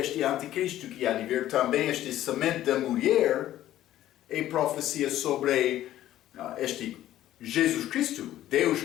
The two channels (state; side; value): quieter; right; 13.3 dB